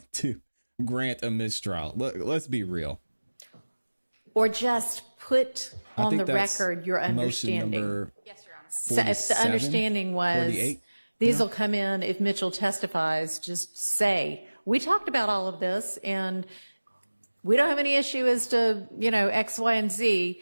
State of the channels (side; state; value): both; inverted; correlation -1.00